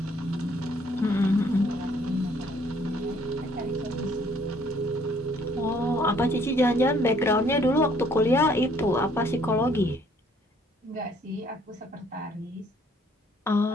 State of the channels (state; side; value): normal; both; correlation 0.62